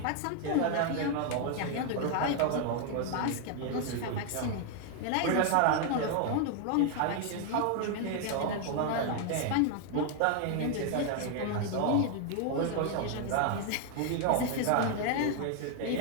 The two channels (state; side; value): different; both; correlation 0.00